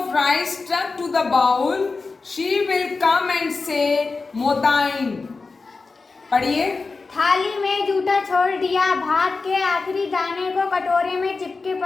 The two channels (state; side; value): quieter; right; 4.1 dB